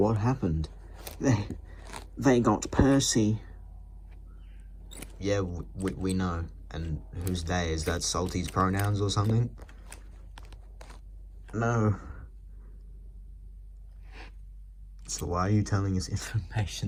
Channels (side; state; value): both; identical; correlation 1.00